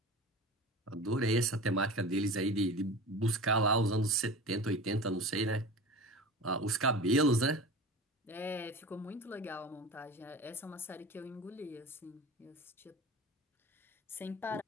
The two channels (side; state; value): both; normal; correlation 0.34